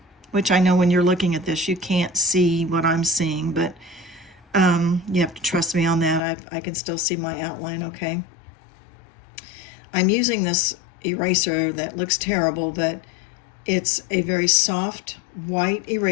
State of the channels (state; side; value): drops out; right; at 6.2 s